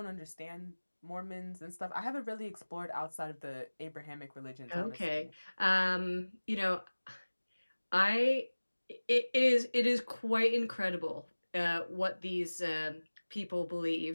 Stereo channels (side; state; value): both; inverted; correlation -1.00